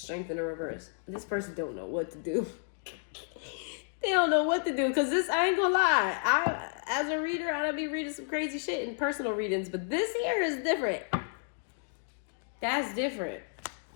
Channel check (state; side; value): silent; right; digital silence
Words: in the reverse. This person don't know what to do. They don't know what to do. Because this, I ain't gonna lie. As a reader, I don't be reading some crazy shit in personal readings. But this here is different. That's different.